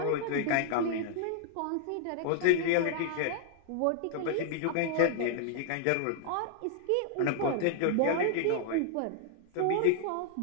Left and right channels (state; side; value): different; both; correlation 0.00